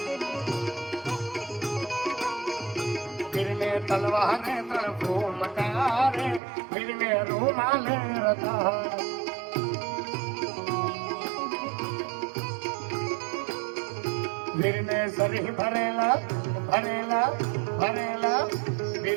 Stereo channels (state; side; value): drops out; left; at 6.4 s